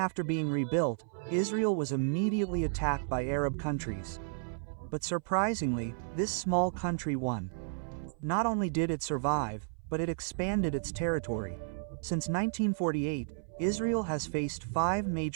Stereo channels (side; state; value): left; silent; 56 dB below the other